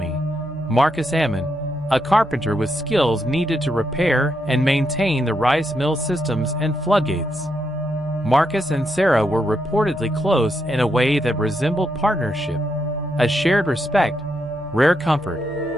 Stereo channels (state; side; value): noise; left; hum, 23 dB below the sound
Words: Marcus Ammon, a carpenter with skills needed to repair and maintain the rice mill systems and floodgates. Marcus and Sarah were reportedly close in a way that resembled partnership, a shared respect, rare comfort,